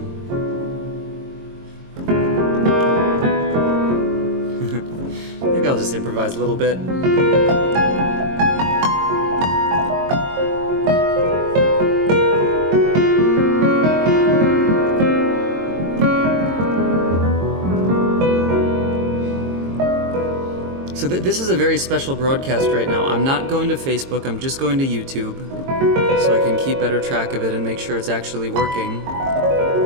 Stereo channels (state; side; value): late; left; 22 ms